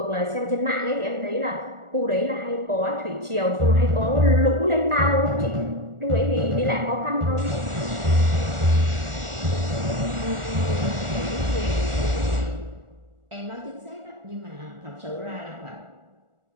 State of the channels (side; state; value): left; late; 1.4 ms